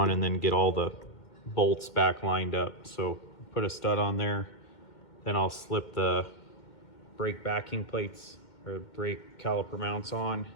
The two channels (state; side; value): late; right; 2.1 ms